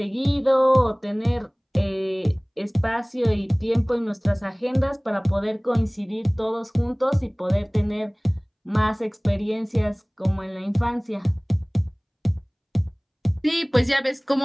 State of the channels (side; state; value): both; identical; correlation 1.00